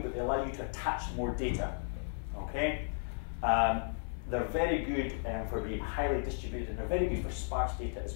but they allow you to attach more data. Okay, they're very good for being highly distributed, and they're very good for sparse data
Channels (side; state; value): right; silent; 55 dB below the other